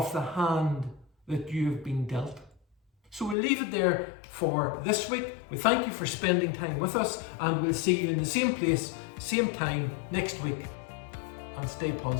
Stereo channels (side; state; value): right; drops out; at 3.4 s